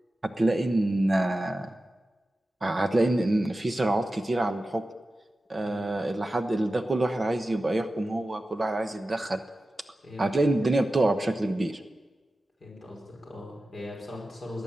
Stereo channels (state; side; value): normal; both; correlation 0.94